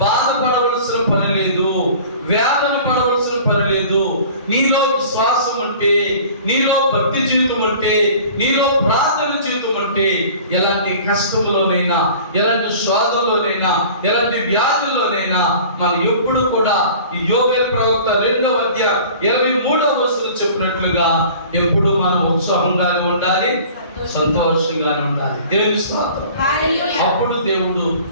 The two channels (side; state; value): both; inverted; correlation -0.45